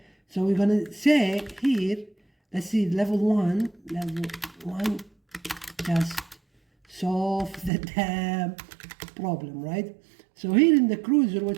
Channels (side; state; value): left; drops out; at 7.7 s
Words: So we're going to say here, let's see, level 1, just solve the damn problem, right? So here in the cruiser,